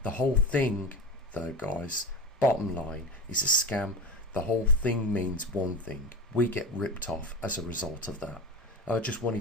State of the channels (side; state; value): both; normal; correlation 0.27